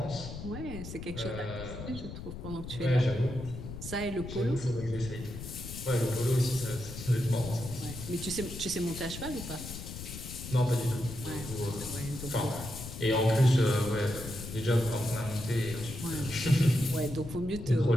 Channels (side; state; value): left; noise; rumble, 9 dB below the sound